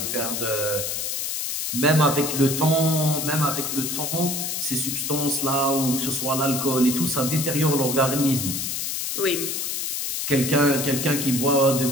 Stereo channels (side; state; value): left; noise; hiss, 2 dB below the sound